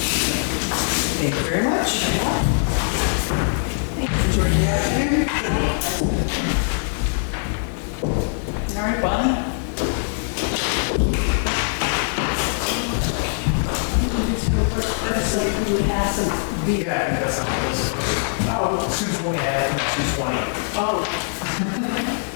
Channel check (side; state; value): right; silent; 64 dB below the other